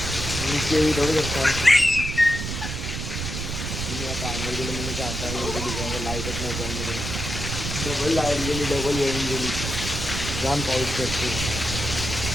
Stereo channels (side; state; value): right; noise; rumble, 4 dB below the sound